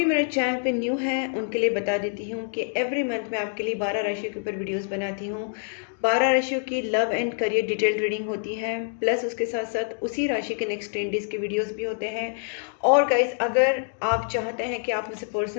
मेरे चैनल पे न्यू है उनके लिए बता देती हूँ कि एवरी मंथ मैं आपके लिए 12 राशियों के ऊपर वीडियोस बनाती हूँ। 12 राशियों की love and career detailed reading होती है, प्लस उसके साथ साथ उसी राशि के नेक्स्ट 10 डेज के वीडियोस भी होते हैं। और गाइज, अगर आप चाहते हैं कि आप मुझसे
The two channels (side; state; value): right; silent; digital silence